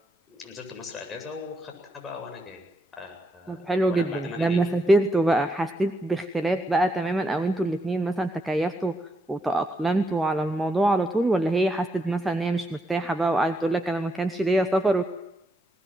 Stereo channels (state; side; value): normal; both; correlation 0.81